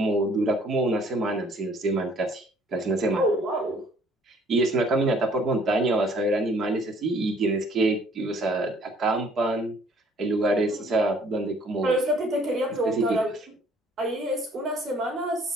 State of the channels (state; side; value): normal; both; correlation 0.58